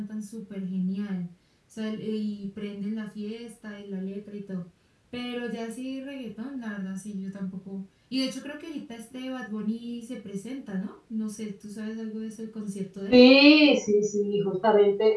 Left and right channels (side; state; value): both; identical; correlation 1.00